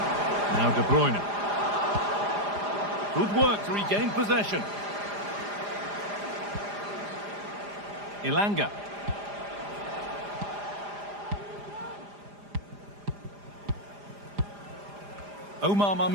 Now De Bruyne. Good work to regain possession. Ilanga. Omar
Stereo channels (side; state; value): left; late; 4.9 ms